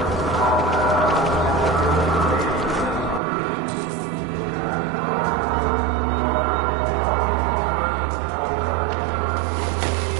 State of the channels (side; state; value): left; drops out; at 3.2 s